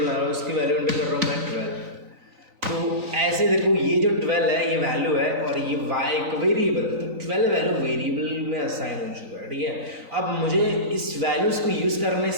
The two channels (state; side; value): late; left; 3.9 ms